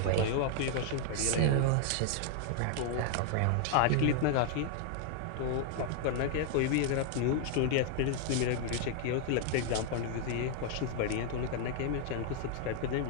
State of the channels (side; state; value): both; different; correlation 0.00